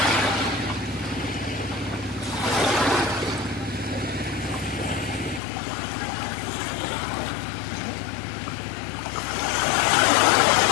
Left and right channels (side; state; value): right; drops out; at 5.4 s